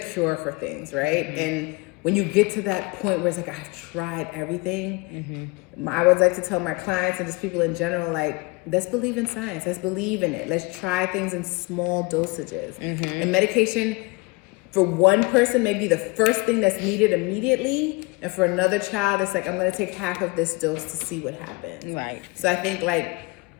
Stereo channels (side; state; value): right; quieter; 26.1 dB